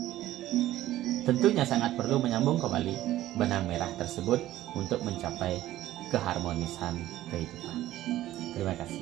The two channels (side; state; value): left; quieter; 14.4 dB